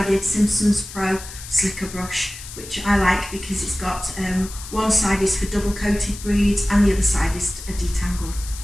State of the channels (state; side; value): noise; left; hiss, 13 dB below the sound